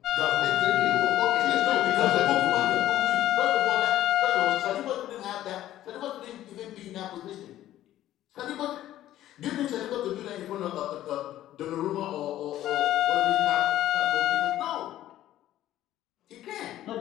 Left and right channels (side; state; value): right; quieter; 13.3 dB